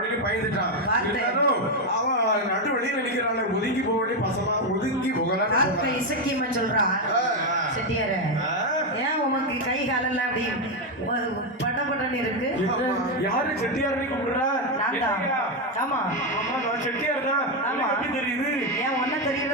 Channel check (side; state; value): both; normal; correlation 0.06